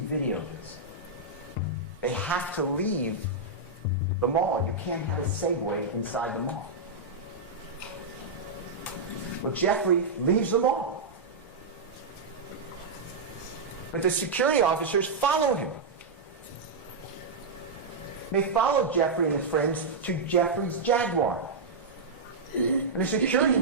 of this, they have to leave the mall. You can't have a Segway inside the mall. Well, Jeffrey leaves the mall. But the security officers follow him. They follow Jeffrey and his friends to Jeffrey's Jaguar. And the security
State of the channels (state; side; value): quieter; left; 3.6 dB